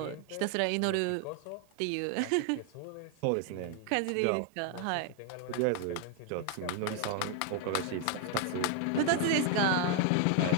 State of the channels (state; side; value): different; both; correlation 0.00